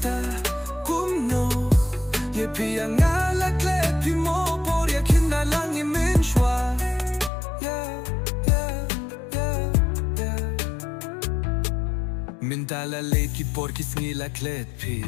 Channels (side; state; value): right; drops out; at 7.3 s